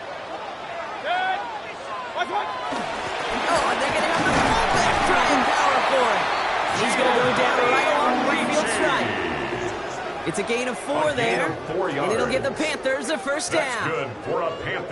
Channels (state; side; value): identical; both; correlation 1.00